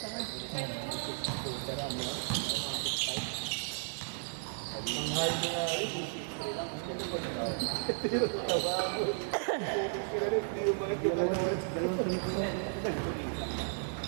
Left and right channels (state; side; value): silent; left; 55 dB below the other